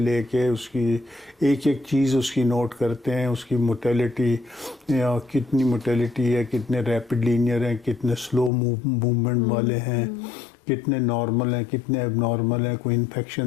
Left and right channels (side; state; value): right; drops out; at 8.5 s